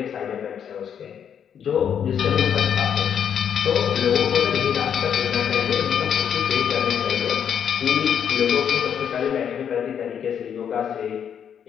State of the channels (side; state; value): right; quieter; 8.3 dB